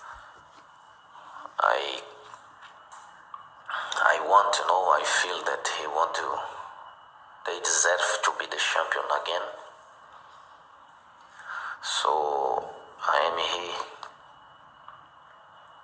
I want to know, I feel that they deserve to be the champion again. So I am here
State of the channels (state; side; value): identical; both; correlation 1.00